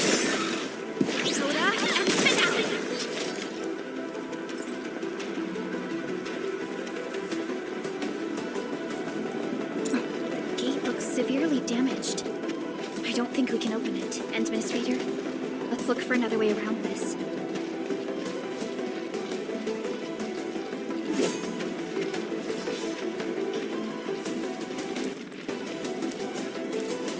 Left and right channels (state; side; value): identical; both; correlation 1.00